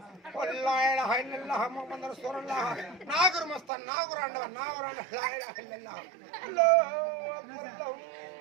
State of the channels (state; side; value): drops out; left; at 3.7 s